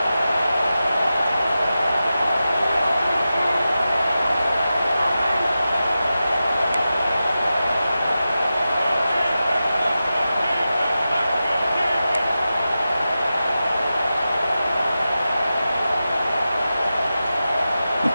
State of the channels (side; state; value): both; inverted; correlation -0.92